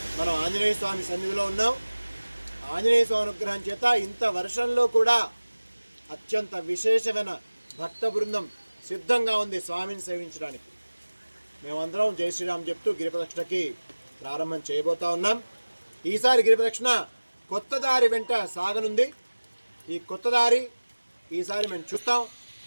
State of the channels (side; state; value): both; inverted; correlation -1.00